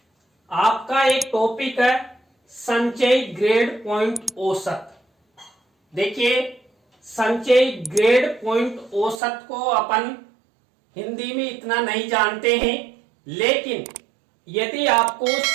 आपका एक टॉपिक है संचयी ग्रेड पॉइंट औसत। देखिए, संचयी ग्रेड पॉइंट औसत को अपन हिंदी में इतना नहीं जानते हैं, लेकिन यदि आपको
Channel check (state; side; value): drops out; left; at 9.2 s